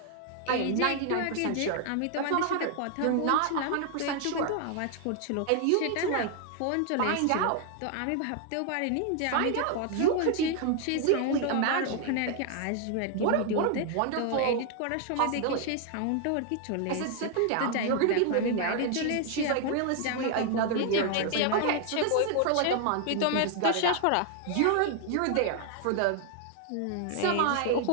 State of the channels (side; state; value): both; different; correlation 0.00